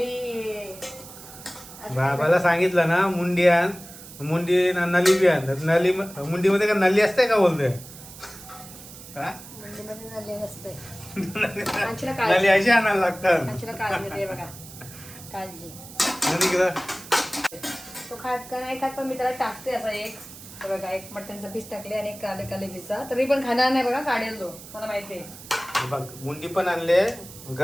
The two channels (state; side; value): noise; right; hiss, 16 dB below the sound